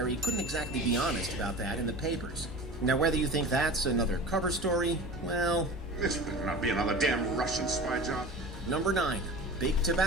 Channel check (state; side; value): normal; both; correlation 0.35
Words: couldn't exactly be honest about that in the papers. Now, whether you think that's another cover story, well... This better not be another damn Russian spy job. Number 9. Big